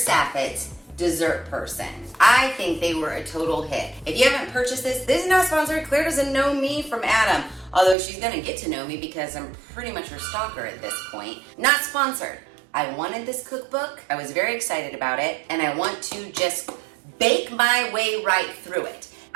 dessert person. I think they were a total hit. If you haven't purchased this is not sponsored. Claire doesn't know me from Adam, although she's gonna get to know me because I'm pretty much her stalker at this point. Not sponsored. I wanted this cookbook. I was very excited about it, and I want to just bake my way right through it.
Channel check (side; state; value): left; drops out; at 8.0 s